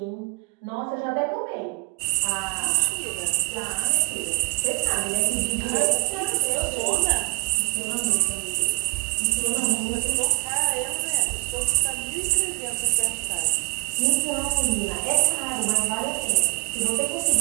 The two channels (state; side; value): quieter; left; 29.0 dB